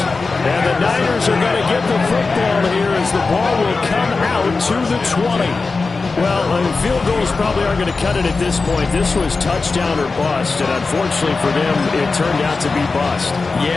And the Niners are going to get the football here as the ball will come out to the 20. Well, field goals probably aren't going to cut it at this point. This was touchdown or bust, and unfortunately for them, it turned out to be bust.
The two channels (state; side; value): quieter; right; 4.1 dB